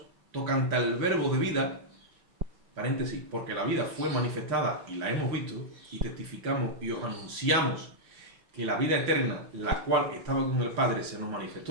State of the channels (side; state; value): left; late; 5.9 ms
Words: tocante al verbo de vida, paréntesis, porque la vida fue manifestada y la hemos visto, y testificamos y os anunciamos que la vida eterna, la cual estaba con el Padre, se nos